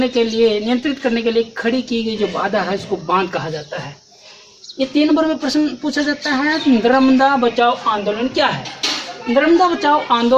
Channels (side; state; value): both; identical; correlation 1.00